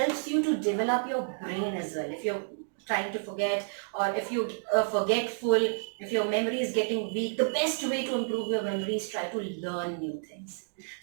you to develop your brain as well. If you're trying to forget, or if you forgetful, if your memory is getting weak, the best way to improve your memory is try to learn new things.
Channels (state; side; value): silent; left; digital silence